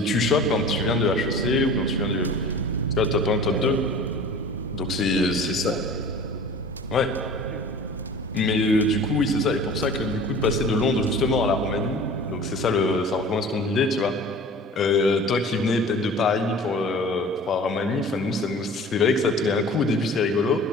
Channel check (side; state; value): both; normal; correlation 0.42